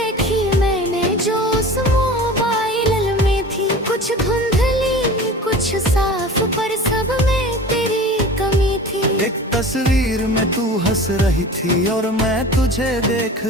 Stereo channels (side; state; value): both; normal; correlation 0.38